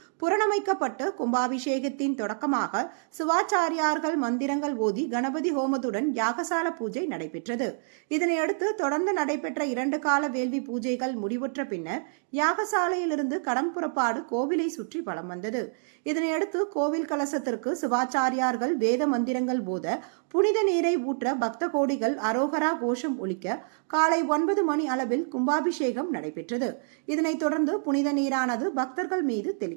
புரணமைக்கப்பட்டு கும்பாபிஷேகத்தின் தொடக்கமாக சிவாச்சாரியார்கள் மந்திரங்கள் ஓதி கணபதி ஹோமத்துடன் யாகசால பூஜை நடைபெற்றது. இதனையடுத்து தொடர்ந்து நடைபெற்ற 2 கால வேள்வி பூஜைகள் முடிவுற்ற பின்னர் யாகசாலையிலிருந்து கடம் புறப்பாடு கோவிலை சுற்றி வலம் வந்தது. இதனையடுத்து கோவில் கலசத்திற்கு சிவாச்சாரியார்கள் வேத மந்திரங்கள் போத புனித நீரை ஊற்ற பக்த கோடிகள் அரோகரா கோஷம் ஒலிக்க காலை 9 மணி அளவில் கும்பாபிஷேகம் நடைபெற்றது. இதனைத் தொடர்ந்து புனித நீரானது பக்தர்கள் மீது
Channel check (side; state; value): left; silent; digital silence